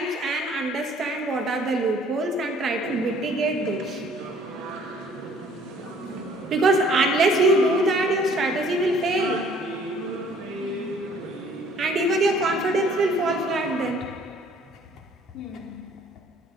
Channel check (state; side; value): normal; both; correlation 0.57